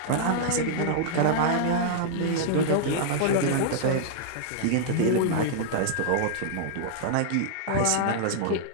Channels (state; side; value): different; both; correlation -0.01